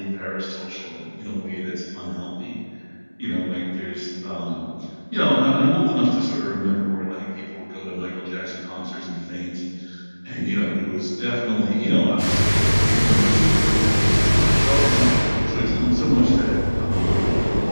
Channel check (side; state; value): both; inverted; correlation -1.00